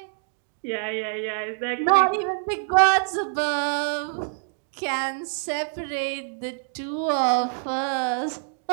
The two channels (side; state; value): left; silent; 61 dB below the other